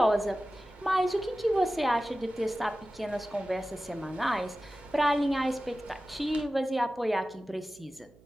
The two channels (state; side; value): noise; right; hum, 27 dB below the sound